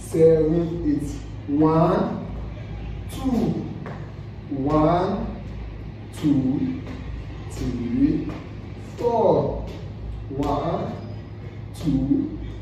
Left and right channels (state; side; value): identical; both; correlation 1.00